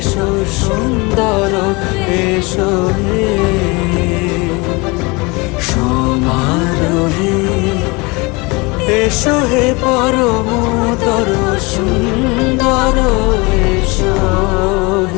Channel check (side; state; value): right; quieter; 26.2 dB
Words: সুন্দর, এসো হে সমারোহে, এসো হে পরমতর সুন্দর, এসো